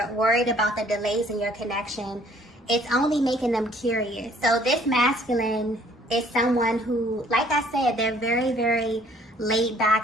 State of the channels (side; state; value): both; normal; correlation 0.59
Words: worried about the delays in your connection, it's only making them curious. So this masculine is someone who, like I said, they're very, very laid